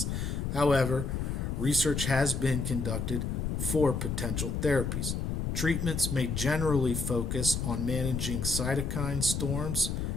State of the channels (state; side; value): noise; left; rumble, 2 dB below the sound